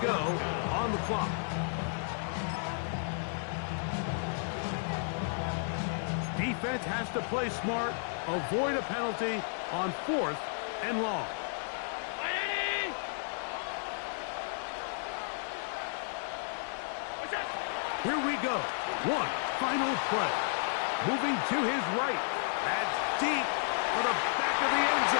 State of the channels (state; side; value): silent; right; digital silence